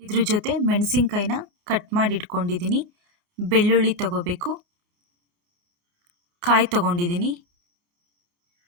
ಇದ್ರ ಜೊತೆ ಮೆಣಸಿನ್ಕಾಯಿನ ಕಟ್ ಮಾಡಿ ಇಟ್ಕೊಂಡಿದ್ದೀನಿ. ಬೆಳ್ಳುಳ್ಳಿ ತಗೋಬೇಕು, ಕಾಯಿ ತಗೊಂಡಿದ್ದೀನಿ,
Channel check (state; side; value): late; left; 28 ms